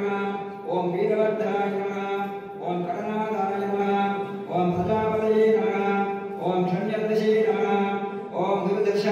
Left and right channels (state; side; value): identical; both; correlation 1.00